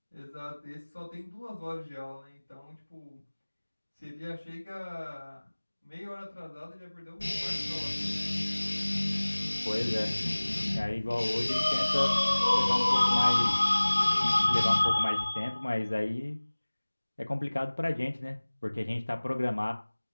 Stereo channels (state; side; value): inverted; both; correlation -1.00